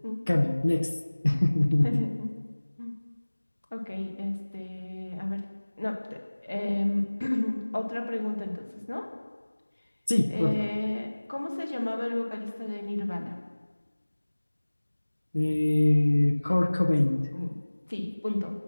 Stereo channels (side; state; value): both; inverted; correlation -1.00